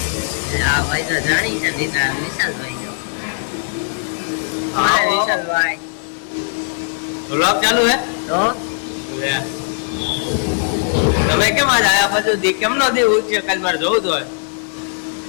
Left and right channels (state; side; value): silent; right; digital silence